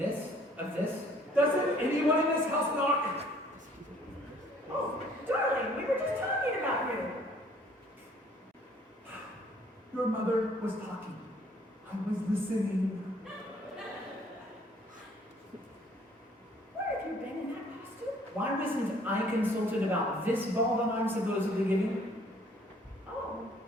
of this? Doesn't anyone in this house knock? Oh, darling, we were just talking about you. Your mother was talking. I was listening. Where have you been in that costume? Why wasn't I consulted about this ball that I'm supposedly giving? Oh,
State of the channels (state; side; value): normal; both; correlation 0.58